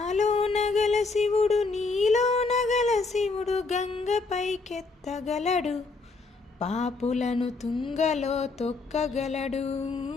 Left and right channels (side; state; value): right; quieter; 3.9 dB